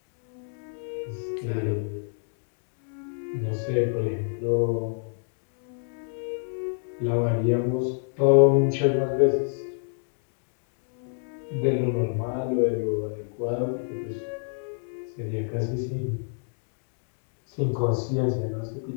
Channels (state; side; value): silent; right; digital silence